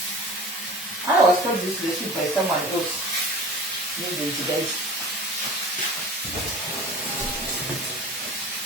I was told this recipe by someone else. Maybe guys.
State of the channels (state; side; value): normal; both; correlation 0.39